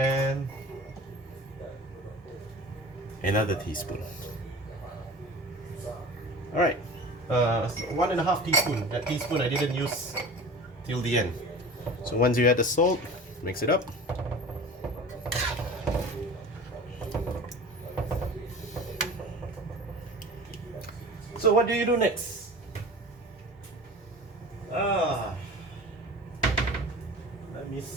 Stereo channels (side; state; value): both; normal; correlation 0.38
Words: another teaspoon. Alright, 1.5 teaspoon. That teaspoon I didn't use till the end. So once you add the salt, mix it up. So what do you do next? Let me